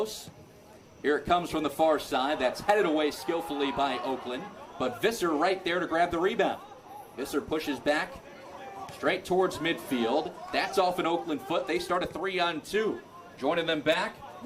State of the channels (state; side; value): identical; both; correlation 1.00